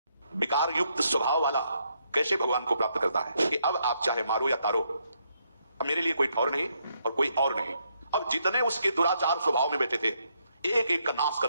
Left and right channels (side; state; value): both; inverted; correlation -0.76